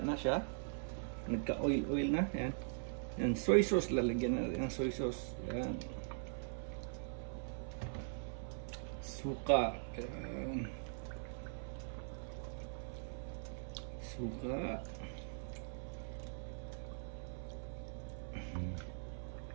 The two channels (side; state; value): left; silent; 50 dB below the other